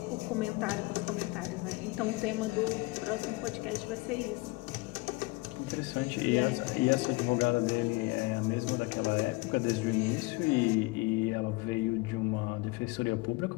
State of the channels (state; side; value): quieter; right; 24.2 dB